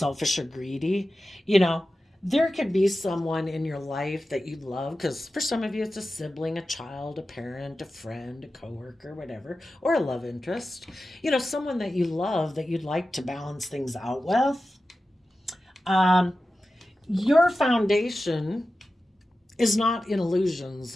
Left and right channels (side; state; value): both; normal; correlation 0.94